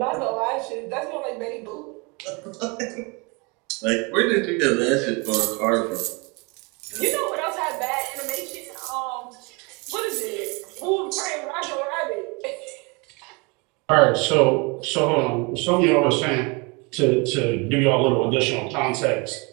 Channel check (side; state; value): left; quieter; 29.3 dB